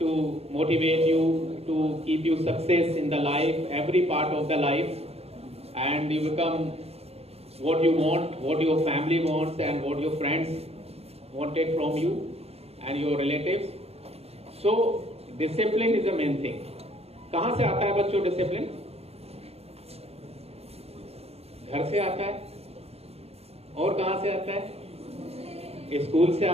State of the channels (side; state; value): left; late; 0.29 ms